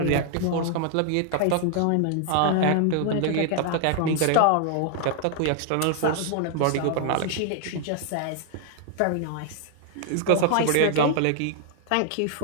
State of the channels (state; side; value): different; both; correlation 0.00